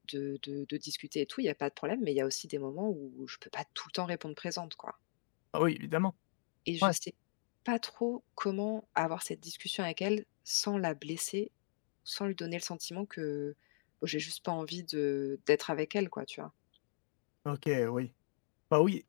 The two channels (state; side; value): silent; right; digital silence